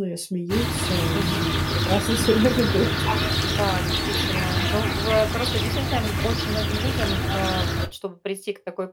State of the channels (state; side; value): identical; both; correlation 1.00